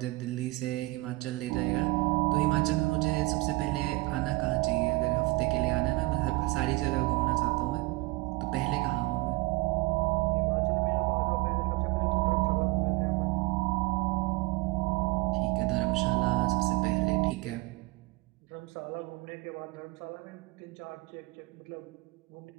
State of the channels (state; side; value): quieter; left; 22.5 dB